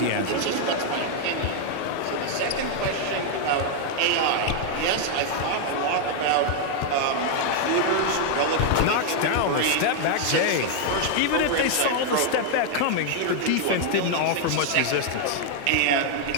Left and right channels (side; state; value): both; different; correlation 0.00